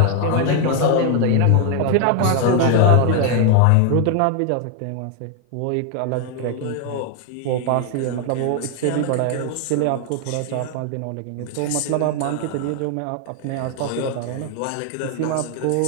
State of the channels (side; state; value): both; different; correlation 0.01